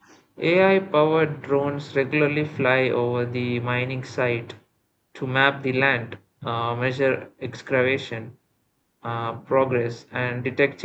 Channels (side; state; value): both; identical; correlation 1.00